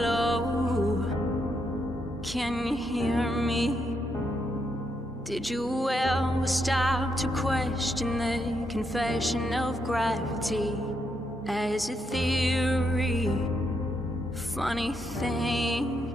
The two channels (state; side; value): normal; both; correlation 0.79